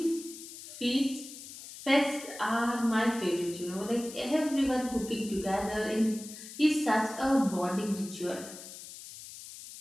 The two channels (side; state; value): left; noise; hiss, 14 dB below the sound